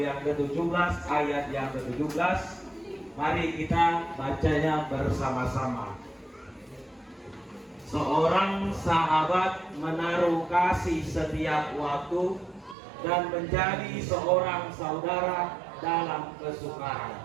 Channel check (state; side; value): drops out; left; at 12.8 s